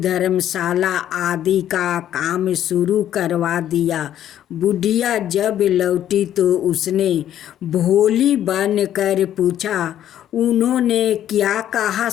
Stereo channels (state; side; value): quieter; right; 11.2 dB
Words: आदि का काम शुरू करवा दिया। बुढ़िया जब लौटी तो उसने भोली बन कर पूछा, उन्होंने क्या कहा